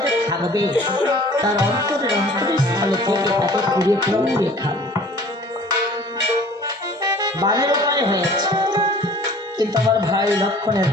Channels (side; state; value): both; normal; correlation 0.49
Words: থাকবে, তার অন্তরের স্থলে থেকে তাকে কুড়িয়ে কুড়িয়ে খাবে। বানের উপায় হয়েছে, কিন্তু আমার ভাই লক্ষণের